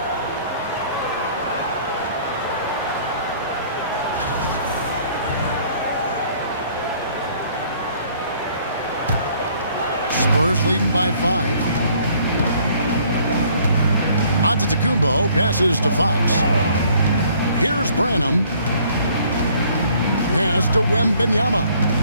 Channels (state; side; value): inverted; both; correlation -0.59